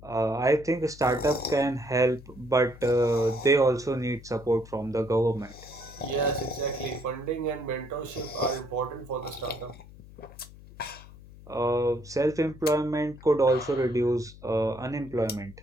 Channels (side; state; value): left; noise; hum, 19 dB below the sound